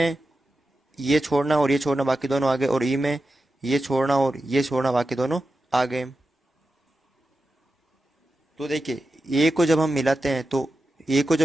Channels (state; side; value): normal; both; correlation 0.91